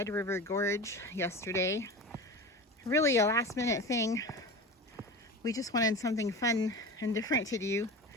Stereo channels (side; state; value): both; normal; correlation 0.31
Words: River Gorge yesterday. Really a last minute thing. We just wanted something fun and different to do